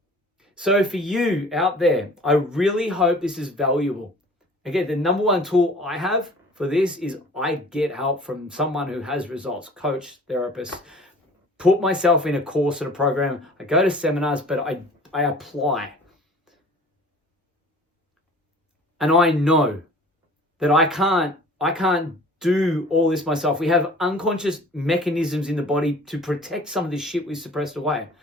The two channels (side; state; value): both; normal; correlation 0.47